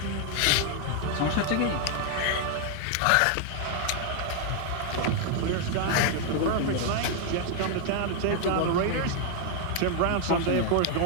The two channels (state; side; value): different; both; correlation 0.00